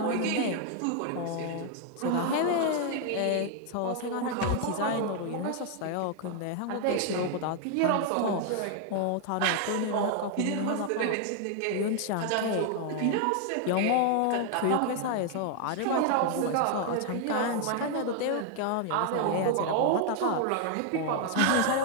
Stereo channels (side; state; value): both; different; correlation 0.00